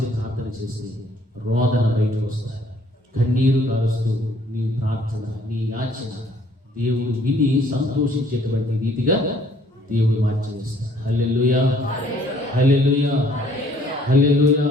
ప్రార్థన చేసి రోదన బయటకు వస్తాయి. కన్నీరు కారుస్తూ నీ ప్రార్థన, నీ యాచన దేవుడు విని సంతోషించేటువంటి రీతిగా దేవుడు మార్చేస్తాడు. హల్లెలూయా, హల్లెలూయా, హల్లెలూయా,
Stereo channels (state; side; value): normal; both; correlation 0.61